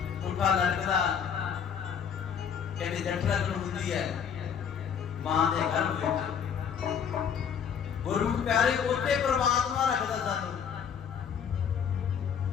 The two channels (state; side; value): quieter; right; 7.5 dB